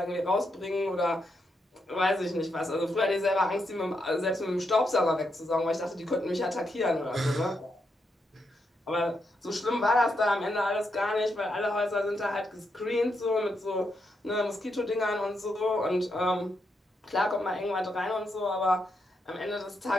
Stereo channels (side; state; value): both; normal; correlation 0.82